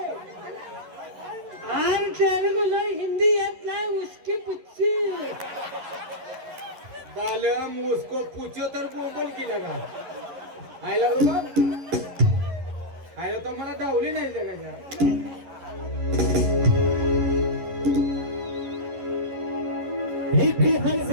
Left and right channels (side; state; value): left; late; 11 ms